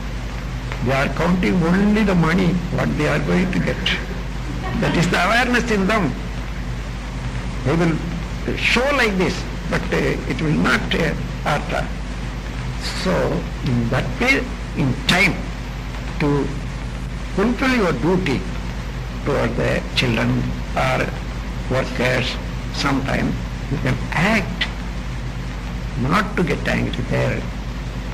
They are counting only the money, what they are going to get. That is the awareness in them. They will show like this, but it will not hurt. So, in that way, in time, to fulfill your duty toward the children or workers, sometime you can act, not to get angry there.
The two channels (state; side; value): identical; both; correlation 1.00